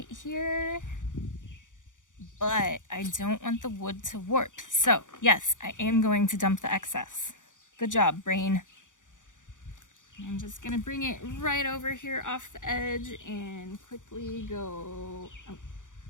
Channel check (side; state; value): right; late; 0.87 ms